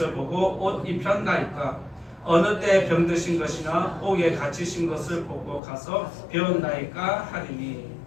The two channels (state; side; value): drops out; right; at 5.6 s